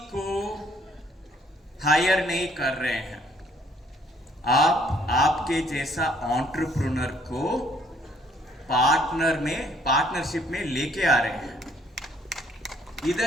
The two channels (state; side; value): normal; both; correlation 0.63